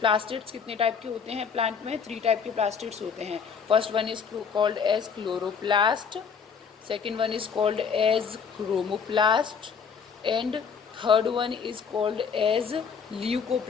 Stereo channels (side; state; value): right; quieter; 6.3 dB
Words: कितने टाइप के होते हैं प्लांट में? 3 टाइप के प्लास्टिड्स होते हैं. First one is called as chloroplast, second one is called as chromoplast, and third one is called as